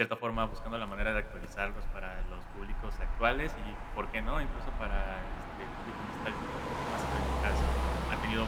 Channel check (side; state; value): both; identical; correlation 1.00